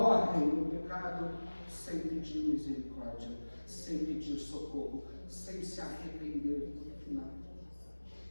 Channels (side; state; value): both; inverted; correlation -1.00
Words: no pecado sem pedir misericórdia, sem pedir socorro, sem se arrepender no final.